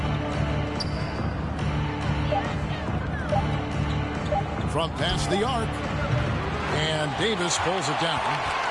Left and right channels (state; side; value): identical; both; correlation 1.00